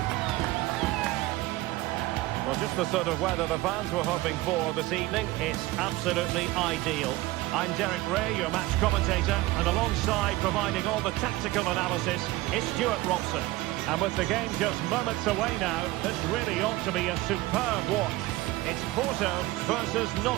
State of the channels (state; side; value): quieter; left; 18.7 dB